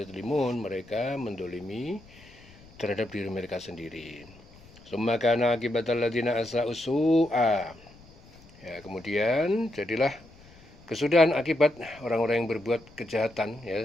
mereka mendolimi terhadap diri mereka sendiri. Summa kana akibatal ladzina asa'u su'a, ya, kemudian jadilah kesudahan akibat orang-orang yang berbuat kejahatan,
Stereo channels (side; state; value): left; noise; rumble, 24 dB below the sound